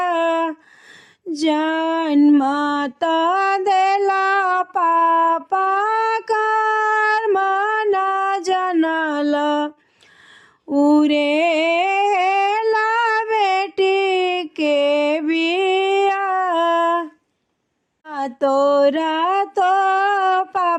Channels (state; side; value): identical; both; correlation 1.00